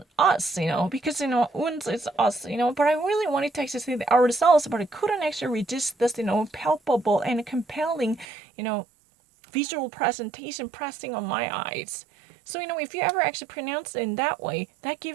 us, because, uns is us, but I really wanted to actually say the ourselves, but I couldn't actually resist this, palpable and compelling, visual presentation pressing on my eyes. So, if you ever actually pronounce it in that way, that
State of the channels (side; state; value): left; drops out; at 8.2 s